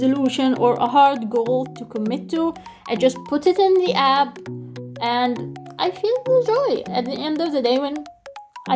or a hard goal to commit to, I just put it in the app, and I feel the joy at the end of the day when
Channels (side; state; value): both; identical; correlation 1.00